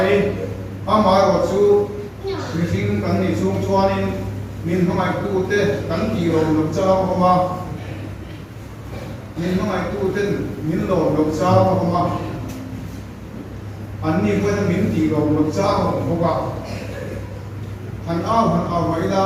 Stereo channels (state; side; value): identical; both; correlation 1.00